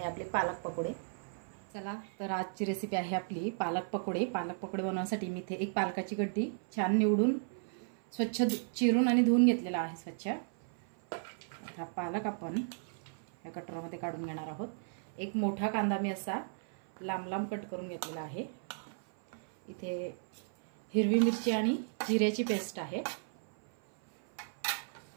आपली पालक पकोडे। चला तर आजची रेसिपी आहे आपली पालक पकोडे। पालक पकोडे बनवण्यासाठी मी इथे एक पालकाची गड्डी छान निवडून स्वच्छ चिरून आणि धुवून घेतलेला आहे स्वच्छ। हा पालक आपण या कटोऱ्यामध्ये काढून घेणार आहोत। एक मोठा कांदा मी असा लांब लांब कट करून घेतलेला आहे। इथे हिरवी मिरची आणि जिऱ्याची पेस्ट आहे।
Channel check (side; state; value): left; silent; 55 dB below the other